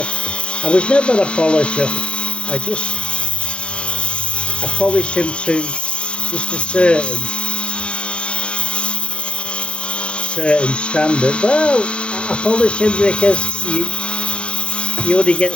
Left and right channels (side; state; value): right; late; 0.056 ms